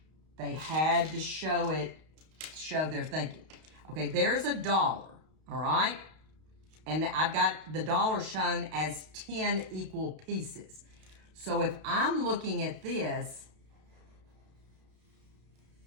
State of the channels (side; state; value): left; late; 32 ms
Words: They had to show it, show their thinking. Okay, there's $1, all right? And I've got the $1 shown as 10 equal pieces. So if I'm looking at this,